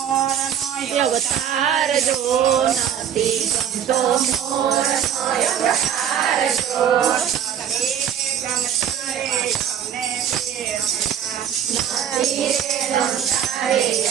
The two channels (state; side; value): quieter; left; 9.2 dB